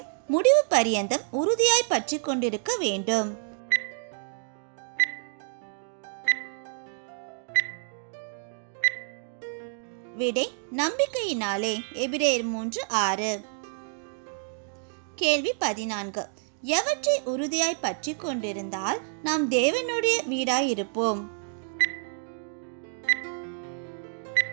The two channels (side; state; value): left; silent; digital silence